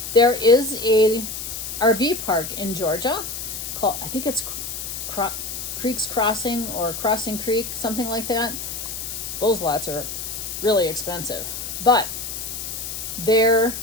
there is a RV park in Georgia called, I think it's Creek's Crossing or Crossing Creek, something like that. Those lots are really expensive, but their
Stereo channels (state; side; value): noise; left; hiss, 6 dB below the sound